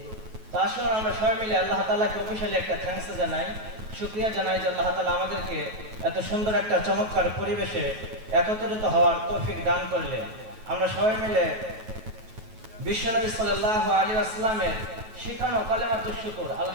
আসুন আমরা সবাই মিলে আল্লাহ তাআলাকে অফিশিয়ালি একটা থ্যাঙ্কস জানাই, শুকরিয়া জানাই যে আল্লাহ তাআলা আমাদেরকে এত সুন্দর একটা চমৎকার পরিবেশে একত্রিত হওয়ার তৌফিক দান করলেন। আমরা সবাই মিলে বিশ্বনবী সাল্লাল্লাহু আলাইহি ওয়াসাল্লামের শিখানো কালেমাতুশ শুকর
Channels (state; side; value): late; left; 9.3 ms